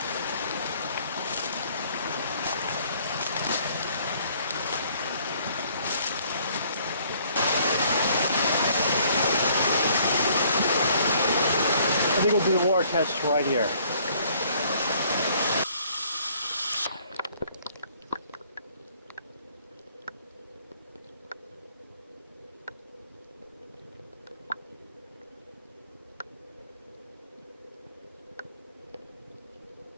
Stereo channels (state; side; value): inverted; both; correlation -0.61